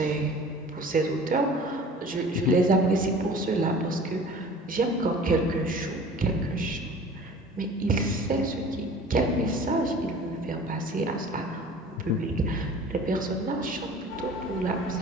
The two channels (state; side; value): normal; both; correlation 0.44